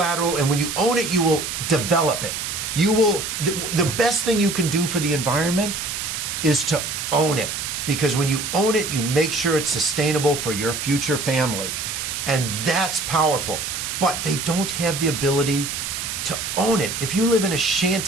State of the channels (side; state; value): right; noise; hiss, 4 dB below the sound